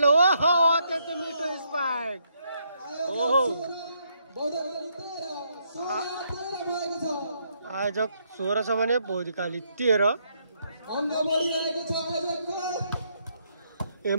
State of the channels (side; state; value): both; inverted; correlation -0.74